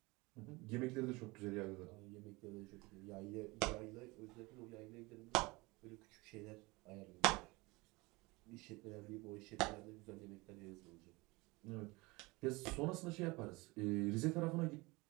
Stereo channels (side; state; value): left; quieter; 23.8 dB